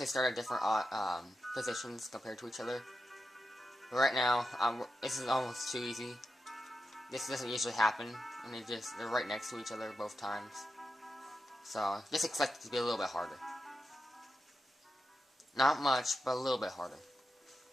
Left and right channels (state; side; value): normal; both; correlation 0.89